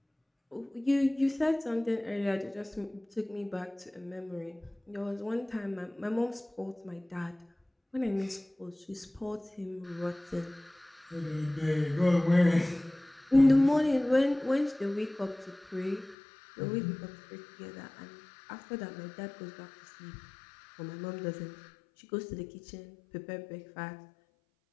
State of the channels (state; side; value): drops out; right; at 16.2 s